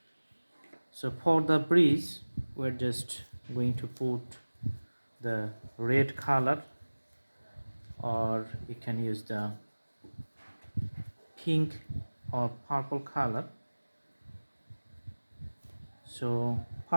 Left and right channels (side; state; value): both; inverted; correlation -1.00